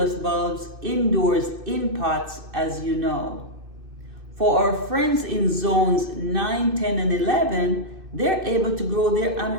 bulbs indoors in pots, as you know. For our friends in zones 9, 10, and 11, they're able to grow their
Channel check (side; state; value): left; late; 2.6 ms